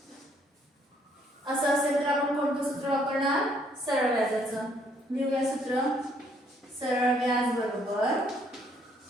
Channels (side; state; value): both; normal; correlation 0.67